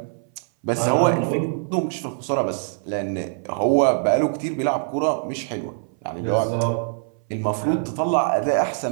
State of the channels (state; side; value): silent; left; 59 dB below the other